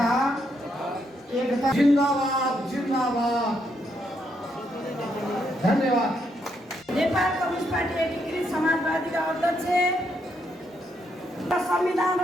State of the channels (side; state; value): both; normal; correlation 0.76